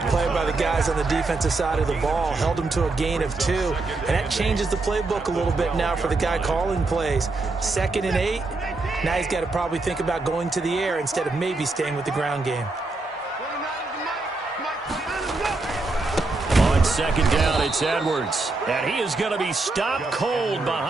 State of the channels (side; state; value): left; quieter; 3.4 dB